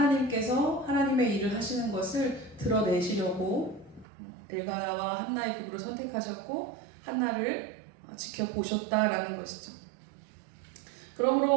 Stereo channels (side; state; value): left; drops out; at 4.0 s